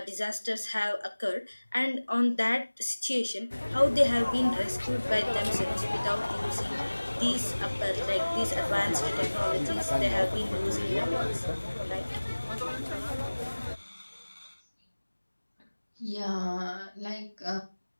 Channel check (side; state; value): both; inverted; correlation -1.00